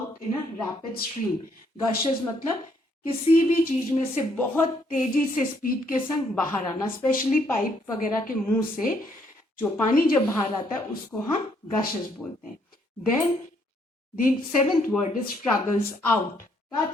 in a rapid stream. Gushes मतलब किसी भी चीज में से बहुत तेजी से स्पीड के संग बाहर आना, स्पेशली पाइप वगैरह के मुंह से जो पानी जब बाहर आता है उसको हम गशेस बोलते हैं. Then the seventh word is struggles out.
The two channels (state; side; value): normal; both; correlation 0.70